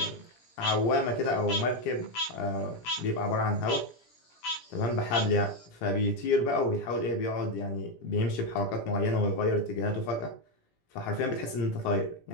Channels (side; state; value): right; late; 17 ms